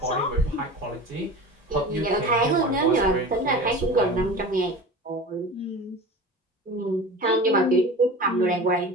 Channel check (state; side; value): normal; both; correlation 0.35